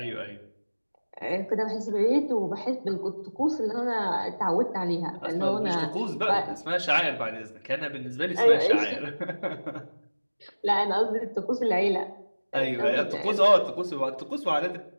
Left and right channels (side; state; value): both; inverted; correlation -1.00